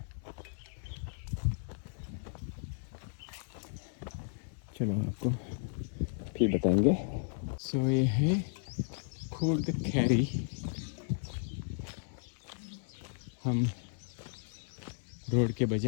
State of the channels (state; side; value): silent; right; 55 dB below the other